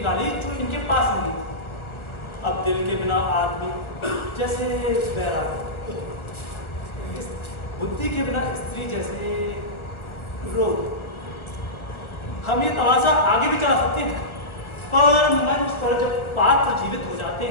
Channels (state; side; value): late; right; 1.3 ms